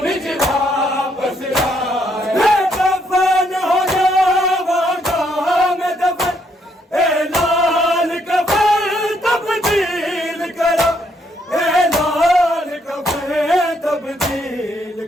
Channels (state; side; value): normal; both; correlation 0.72